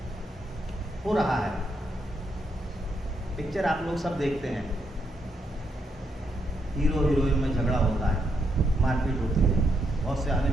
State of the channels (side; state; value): both; normal; correlation 0.79